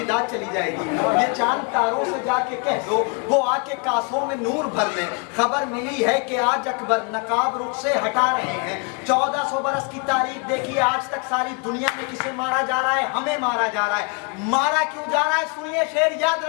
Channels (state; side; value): quieter; right; 35.0 dB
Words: दाग चली जाएगी। ये चांद तारों से जाके कह दो, वो आके कासों में नूर भर ले। खबर मिली है कि आज अकबर नकाब रुख से हटा रहे हैं। 1400 बरस की तारीख देखिए, आज तक सारी दुनिया में किसे मारा जा रहा है? हमें मारा जा रहा है। मारा क्यों जा रहा है? सुनिए शेर, याद